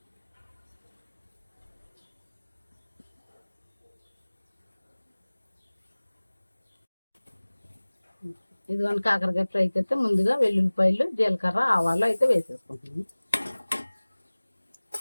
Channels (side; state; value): both; inverted; correlation -1.00